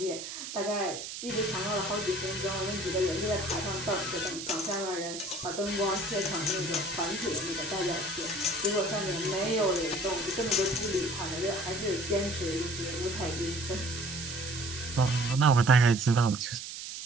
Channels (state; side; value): noise; right; hiss, 8 dB below the sound